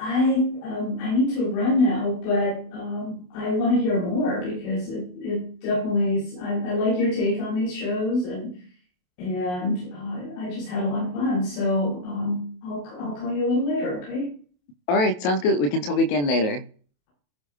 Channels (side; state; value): right; late; 28 ms